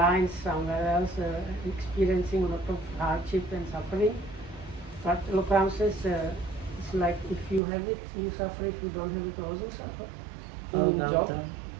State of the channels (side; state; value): left; drops out; at 7.6 s